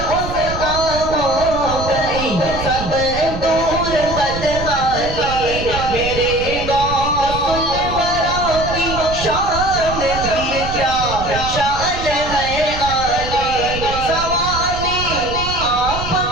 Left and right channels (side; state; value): right; noise; rumble, 8 dB below the sound